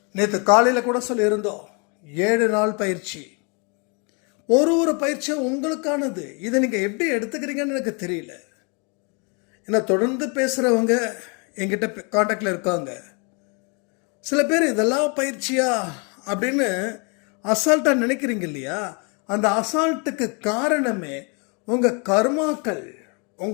நேற்று காலையில கூட சொல்லியிருந்தோம், 7 நாள் பயிற்சி. ஒரு பயிற்சியும் உங்களுக்கானது. இதை நீங்க எப்படி எடுத்துக்கிறீங்கன்னு எனக்கு தெரியல. ஏன்னா தொடர்ந்து பேசுறவங்க என்கிட்ட கான்டாக்ட்ல இருக்காங்க. சில பேர் இதெல்லாம் பயிற்சியா அப்படின்னு அசால்ட்டா நினைக்கிறீங்க இல்லையா? அந்த அசால்ட்டுக்கு காரணமே உங்க கர்மாக்கள்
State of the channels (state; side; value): quieter; right; 34.2 dB